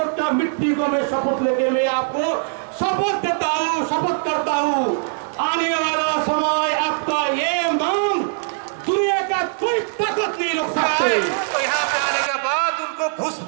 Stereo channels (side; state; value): left; silent; 65 dB below the other